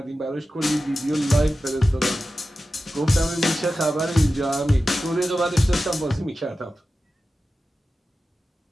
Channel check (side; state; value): both; normal; correlation 0.93